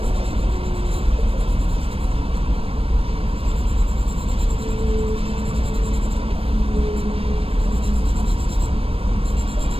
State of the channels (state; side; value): late; left; 0.28 ms